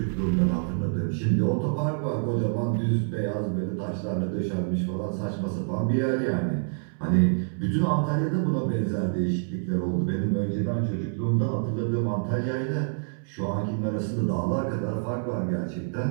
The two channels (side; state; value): left; silent; 60 dB below the other